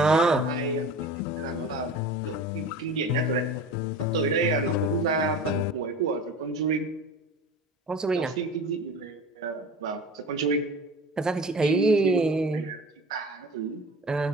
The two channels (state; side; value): normal; both; correlation 0.36